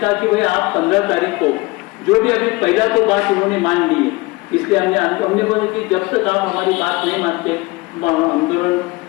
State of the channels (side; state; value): right; quieter; 22.9 dB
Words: कि भाई आप 15 तारीख को जो भी, अभी पहला तो बात उन्होंने मान ली है, इसलिए हमने बोला कि जब तक आप हमारी बात नहीं मानते हम